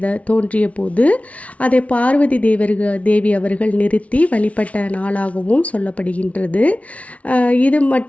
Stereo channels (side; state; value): right; late; 0.066 ms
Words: தோன்றிய போது அதை பார்வதி தேவி அவர்கள் நிறுத்தி வழிபட்ட நாளாகவும் சொல்லப்படுகின்றது. இது